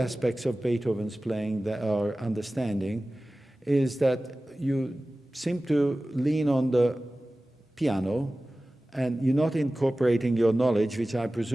of Beethoven's playing that are understanding, is that you seem to lean on the piano and you're not incorporating your knowledge, which I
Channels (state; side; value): normal; both; correlation 0.97